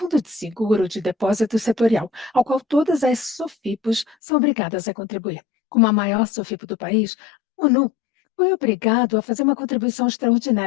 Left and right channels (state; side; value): drops out; right; at 4.2 s